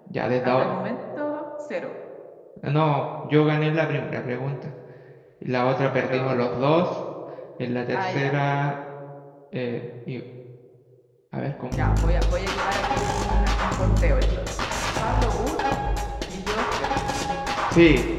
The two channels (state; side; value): identical; both; correlation 1.00